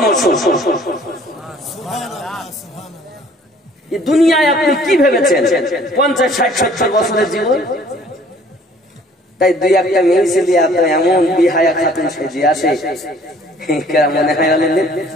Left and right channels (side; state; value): both; normal; correlation 0.56